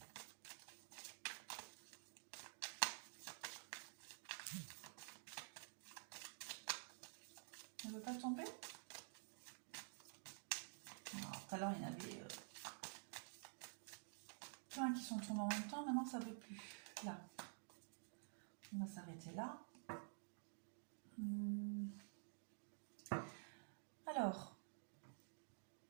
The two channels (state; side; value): silent; left; digital silence